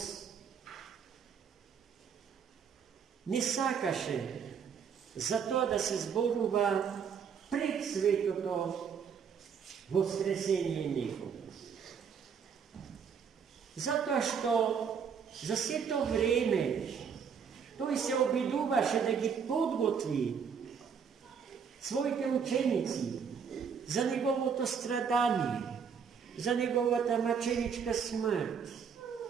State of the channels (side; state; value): left; quieter; 6.8 dB